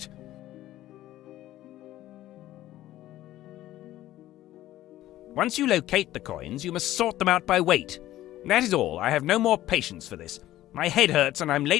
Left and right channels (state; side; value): quieter; right; 14.5 dB